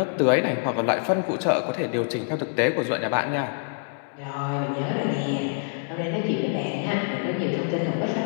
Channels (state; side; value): silent; right; 60 dB below the other